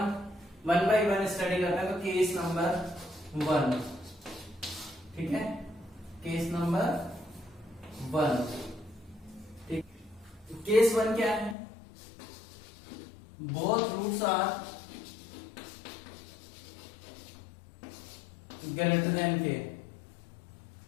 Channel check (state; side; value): drops out; right; at 11.6 s